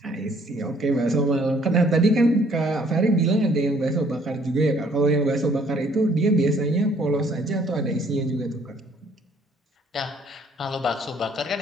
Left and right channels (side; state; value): both; normal; correlation 0.62